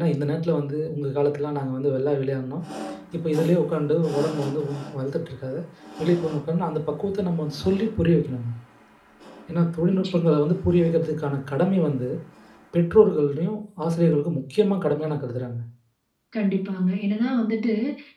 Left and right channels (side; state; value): both; identical; correlation 1.00